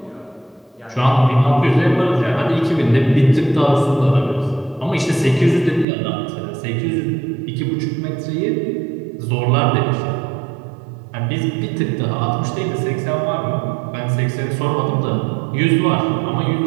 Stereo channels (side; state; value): left; drops out; at 5.9 s